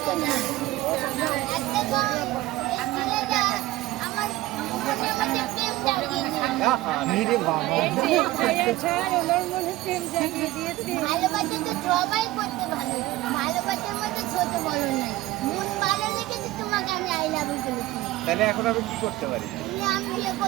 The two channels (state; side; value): quieter; left; 17.3 dB